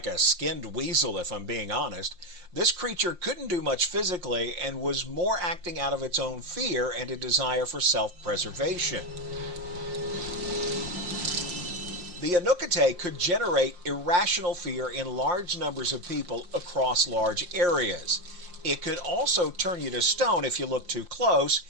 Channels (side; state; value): left; late; 5.6 ms